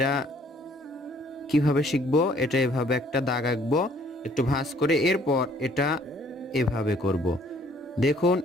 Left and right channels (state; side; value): normal; both; correlation 0.61